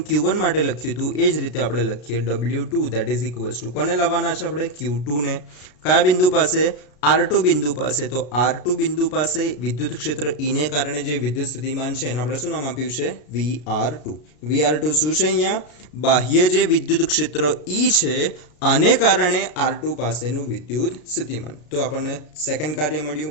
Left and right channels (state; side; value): late; right; 33 ms